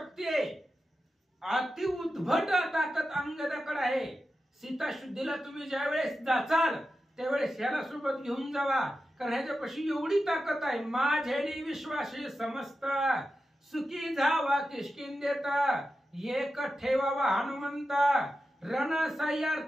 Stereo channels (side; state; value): both; normal; correlation 0.91